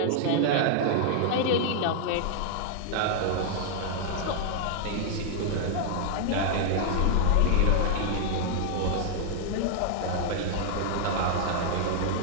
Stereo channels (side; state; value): both; different; correlation -0.01